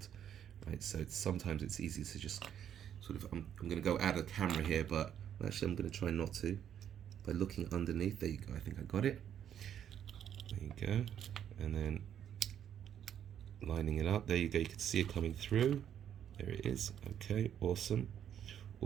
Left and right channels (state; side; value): quieter; left; 9.6 dB